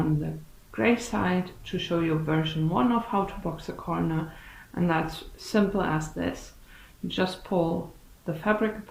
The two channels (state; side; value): identical; both; correlation 1.00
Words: the grey side to show you version 1 of how to box a corner, and that's simple as this. You just pull the fabric